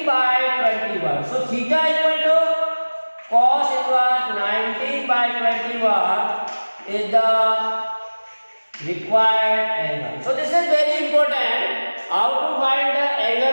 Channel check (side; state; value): both; inverted; correlation -1.00